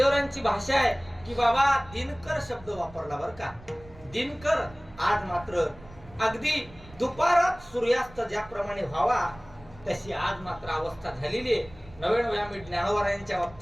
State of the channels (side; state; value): right; noise; rumble, 21 dB below the sound